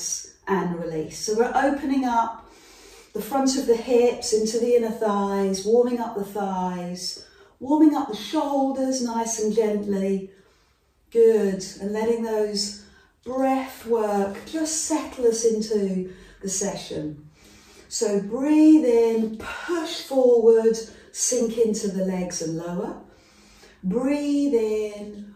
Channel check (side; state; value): both; identical; correlation 1.00